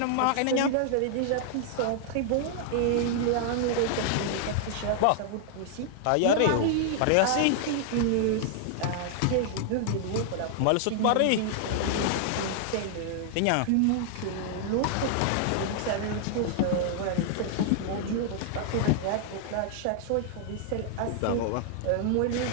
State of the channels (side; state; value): both; different; correlation -0.01